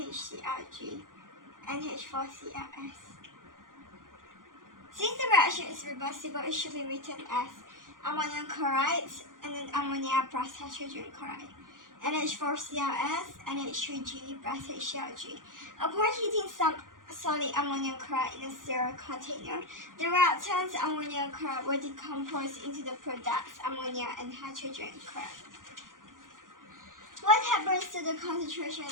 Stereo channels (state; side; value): late; left; 0.89 ms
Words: NH4Cls. Since the reaction is reversible, it should be written as ammonium chloride and then ammonia plus hydrogen chloride, NH4Cls, NH3G plus HClG. Upon heating some solid ammonium chloride in a sterile container, the reactants ammonium chloride will decompose into the products ammonia and hydrogen chloride. What happens to the